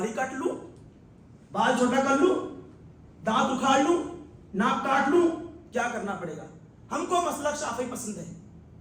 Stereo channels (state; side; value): identical; both; correlation 1.00